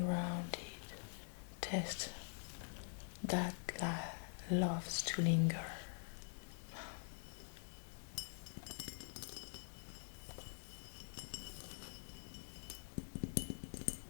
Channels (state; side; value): silent; right; digital silence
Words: taste that loves to linger.